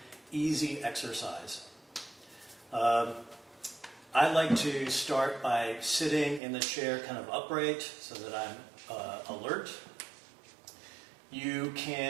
easy exercise. I like to start by sitting in the chair kind of upright so that I'm alert. You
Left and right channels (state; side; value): drops out; left; at 6.4 s